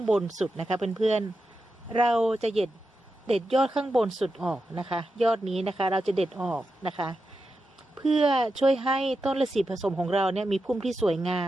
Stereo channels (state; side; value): normal; both; correlation 0.89